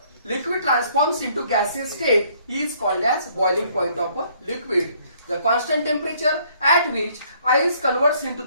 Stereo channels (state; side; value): inverted; both; correlation -0.63